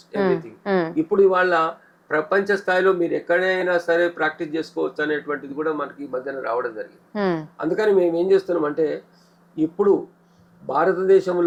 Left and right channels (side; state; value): both; identical; correlation 1.00